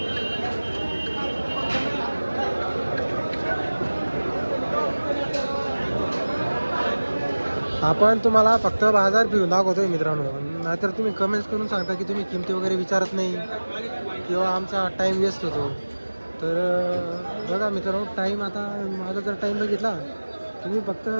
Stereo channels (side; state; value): both; inverted; correlation -1.00